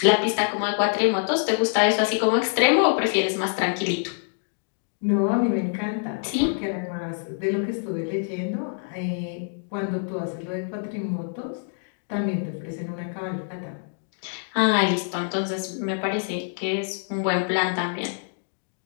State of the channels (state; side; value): silent; right; digital silence